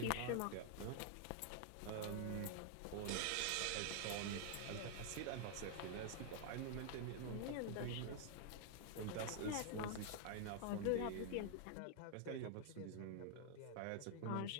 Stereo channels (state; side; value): different; both; correlation 0.00